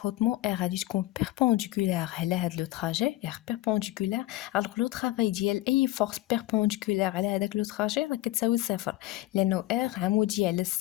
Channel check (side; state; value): right; quieter; 16.7 dB